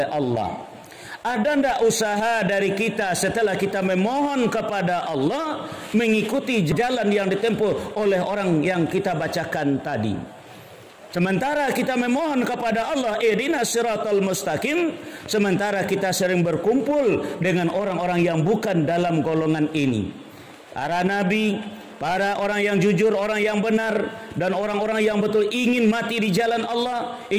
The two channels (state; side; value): identical; both; correlation 1.00